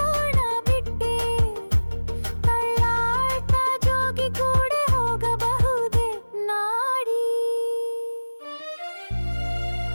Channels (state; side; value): inverted; both; correlation -1.00